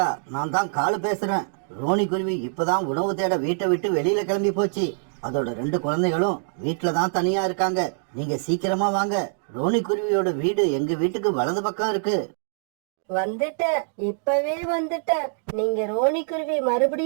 நான் தான் காலு பேசுறேன். ரோனி குருவி இப்பதான் உணவு தேட வீட்டை விட்டு வெளியில கிளம்பி போச்சு. அதோட 2 குழந்தைகளும் வீட்டுல தான் தனியா இருக்காங்க. நீங்க சீக்கிரமா வாங்க. ரோனி குருவியோட வீடு எங்க வீட்டுக்கு வலது பக்கம் இருக்கு. வந்துட்டேன், இப்பவே வந்துட்டேன். நீங்க ரோனி குருவி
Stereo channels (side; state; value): left; silent; digital silence